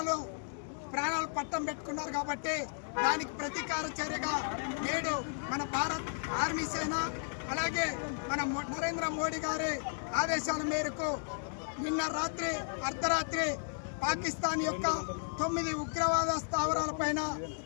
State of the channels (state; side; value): silent; right; digital silence